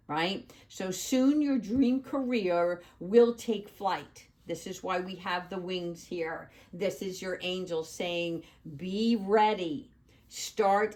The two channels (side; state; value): both; identical; correlation 1.00